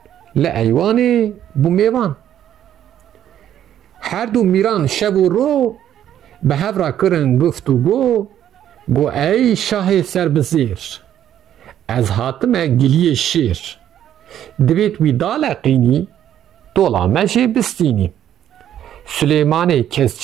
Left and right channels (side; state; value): left; quieter; 10.8 dB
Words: لعیوان بو میوان هر دو میران شب و رو به هفرا کرن گفت و گو ای شاه سر بزیر از هاتم گلیه شیر دویت وی دالقینی دولا مجه بستینی سلیمان